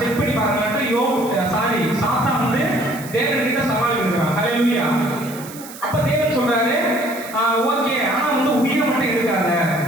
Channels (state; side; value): noise; right; hiss, 16 dB below the sound